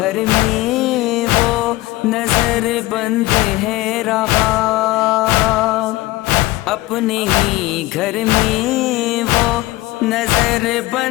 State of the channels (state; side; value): quieter; right; 18.3 dB